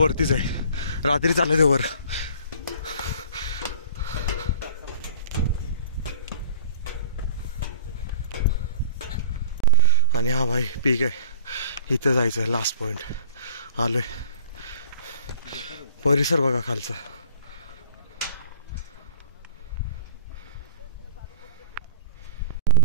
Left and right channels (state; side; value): inverted; both; correlation -0.44